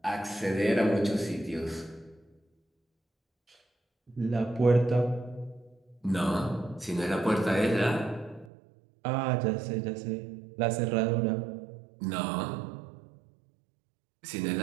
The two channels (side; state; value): left; drops out; at 8.5 s